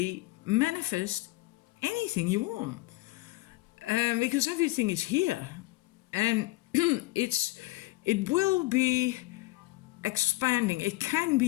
manifest anything you want because everything is here, and it will be expanding. It can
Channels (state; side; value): quieter; right; 20.4 dB